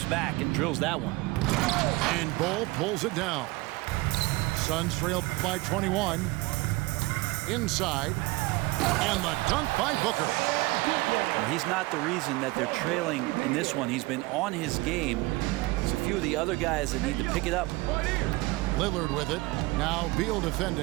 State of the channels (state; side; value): quieter; left; 21.8 dB